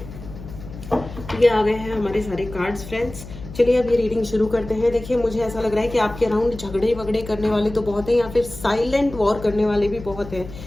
ये आ गए हैं हमारे सारे कार्ड्स फ्रेंड्स। चलिए अब ये रीडिंग शुरू करते हैं। देखिए मुझे ऐसा लग रहा है कि आपके अराउंड झगड़े वगड़े करने वाले तो बहुत हैं, या फिर साइलेंट वॉर करने वाले भी बहुत हैं।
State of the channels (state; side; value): noise; left; hum, 14 dB below the sound